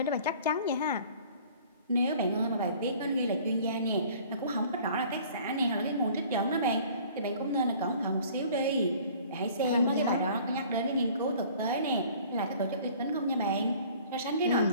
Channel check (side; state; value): both; inverted; correlation -0.51